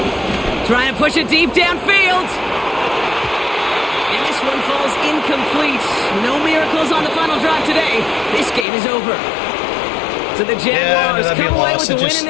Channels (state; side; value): drops out; right; at 8.7 s